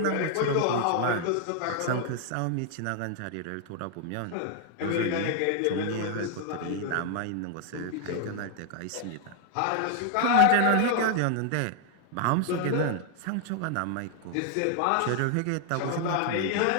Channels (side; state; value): both; different; correlation 0.00